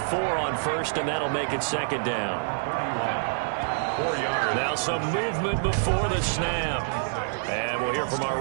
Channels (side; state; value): left; silent; digital silence